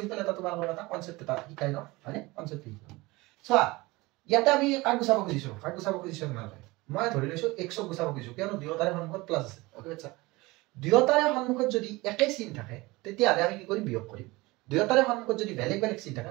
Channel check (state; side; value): quieter; left; 21.9 dB